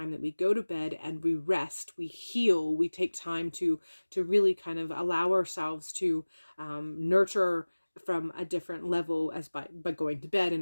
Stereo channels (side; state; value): both; inverted; correlation -1.00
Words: that we go to bed and we rest, we heal, we take time to really kind of allow ourselves to nurture from a different level as by going to bed